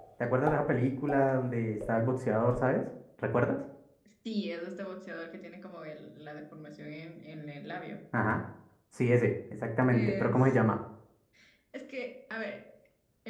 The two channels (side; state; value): both; identical; correlation 1.00